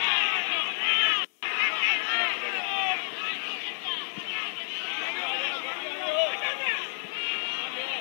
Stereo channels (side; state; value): right; silent; digital silence